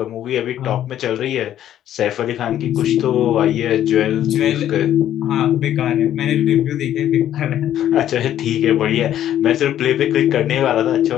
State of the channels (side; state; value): right; quieter; 11.4 dB